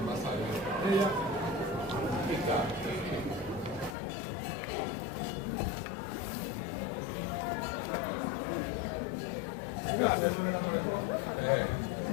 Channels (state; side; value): drops out; right; at 4.0 s